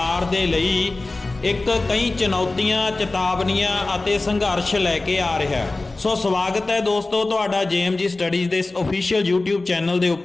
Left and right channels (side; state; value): right; quieter; 3.2 dB